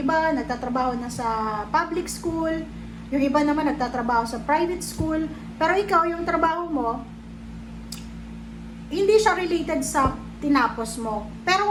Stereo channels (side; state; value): both; identical; correlation 1.00